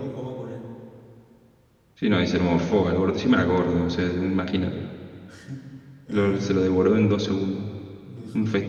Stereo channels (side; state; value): both; identical; correlation 1.00